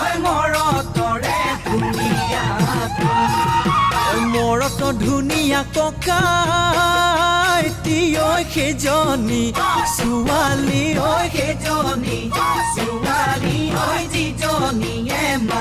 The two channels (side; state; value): both; identical; correlation 1.00